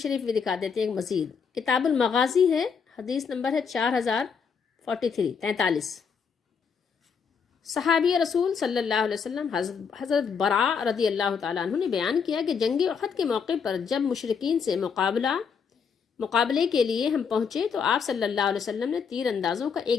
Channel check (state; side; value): quieter; right; 6.3 dB